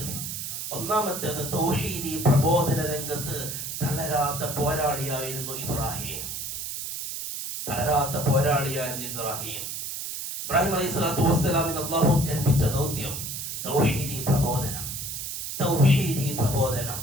ഒന്നാമത്തേത് തൗഹീദി പ്രബോധന രംഗത്ത് തളരാത്ത പോരാളിയായിരുന്നു ഇബ്രാഹിം. ഇബ്രാഹിം അലൈഹിസ്സലാത്തു വസ്സലാമിന് അല്ലാഹു ഏൽപ്പിച്ച ദൗത്യം തൗഹീദി പ്രബോധനം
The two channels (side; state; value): right; noise; hiss, 5 dB below the sound